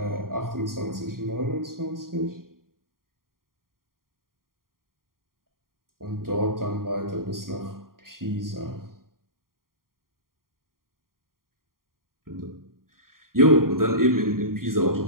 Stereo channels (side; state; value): left; late; 0.91 ms